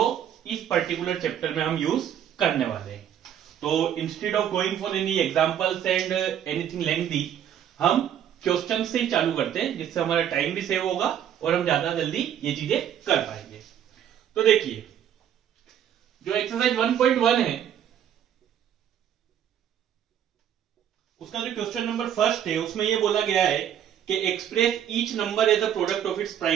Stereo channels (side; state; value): left; quieter; 9.9 dB